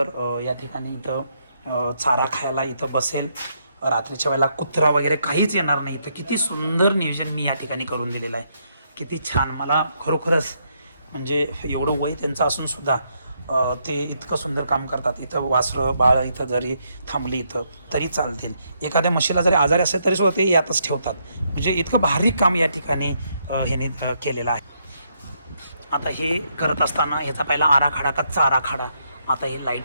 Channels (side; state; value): both; inverted; correlation -0.76